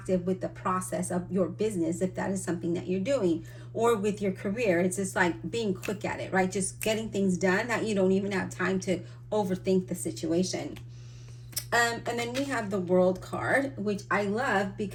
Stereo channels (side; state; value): both; identical; correlation 1.00